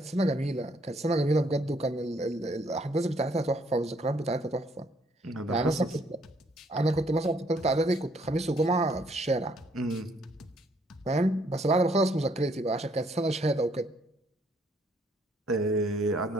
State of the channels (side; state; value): both; normal; correlation 0.67